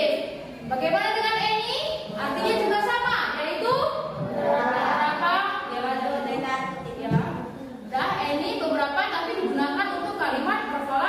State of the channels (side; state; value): both; identical; correlation 1.00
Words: Bagaimana dengan any? Artinya juga sama, yaitu beberapa. Dah, any beberapa tapi digunakan untuk kalimat